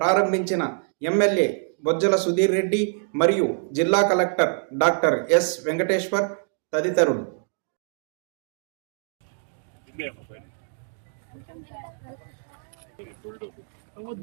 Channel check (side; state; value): left; silent; digital silence